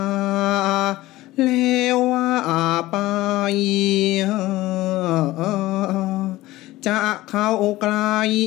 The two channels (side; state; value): right; quieter; 17.6 dB